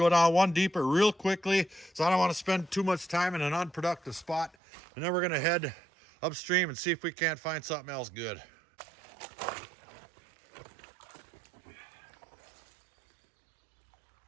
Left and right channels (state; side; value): drops out; left; at 4.5 s